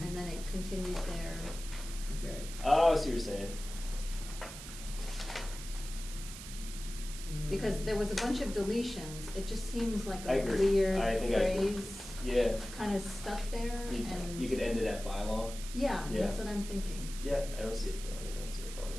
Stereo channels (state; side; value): noise; right; hiss, 12 dB below the sound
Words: and then it continues there. Okay. Oh, I see what you're saying. Because there was a bunch of deletions, it just seems like I a agree. weird I think I agree. phrase Yeah, kind of stuck there, and. you could end it at bylaw. Yeah, Yeah. that's what I'm thinking. Yeah, I don't see a problem.